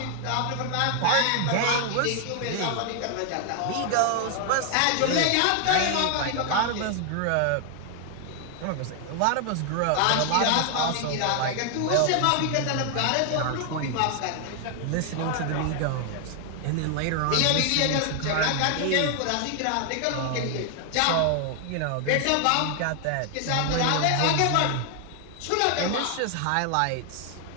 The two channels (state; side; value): different; both; correlation 0.00